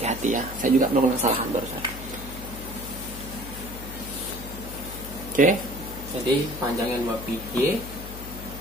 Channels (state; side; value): noise; left; hum, 11 dB below the sound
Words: ya, saya juga melakukan kesalahan barusan. Oke, jadi panjangnya 2 pi y